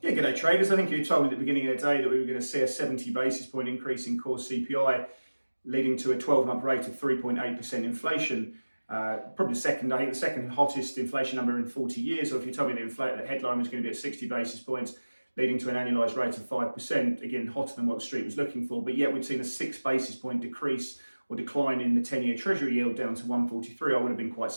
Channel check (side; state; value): both; inverted; correlation -1.00